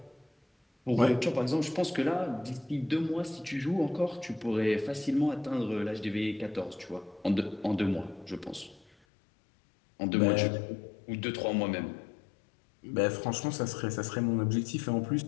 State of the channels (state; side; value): drops out; right; at 8.9 s